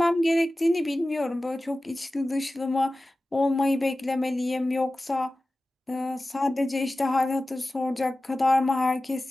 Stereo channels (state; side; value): normal; both; correlation 0.96